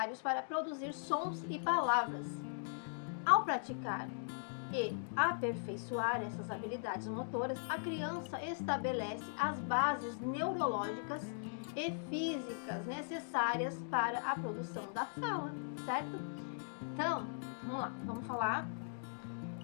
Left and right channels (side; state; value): right; silent; digital silence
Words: para produzir sons e palavras. Ao praticar e aperfeiçoar essas habilidades motoras, a criança estabelece as bases neurológicas e físicas necessárias para a produção da fala, certo? Então, vamos lá, vamos falar